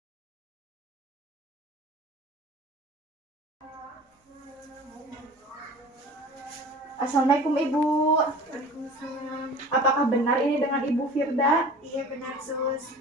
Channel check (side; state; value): both; normal; correlation 0.41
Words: Assalamualaikum Ibu. Waalaikumsalam. Apakah benar ini dengan Ibu Firda? Iya benar sus.